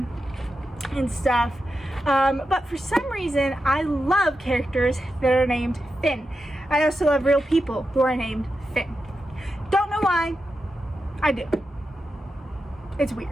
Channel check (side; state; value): both; normal; correlation 0.89